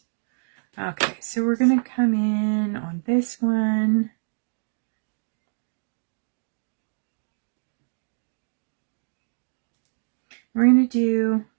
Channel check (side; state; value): left; silent; digital silence